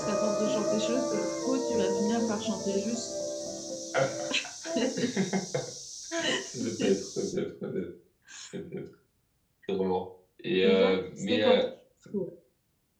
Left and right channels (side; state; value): both; identical; correlation 1.00